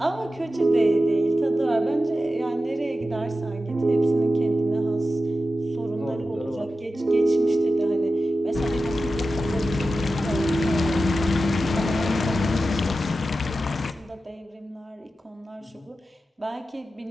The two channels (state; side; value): normal; both; correlation 0.92